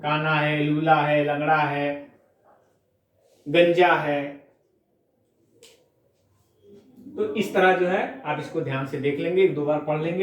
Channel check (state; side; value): identical; both; correlation 1.00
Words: है, लूला है, लंगड़ा है, गंजा है। तो इस तरह जो है आप इसको ध्यान से देख लेंगे, एक दो बार पढ़ लेंगे,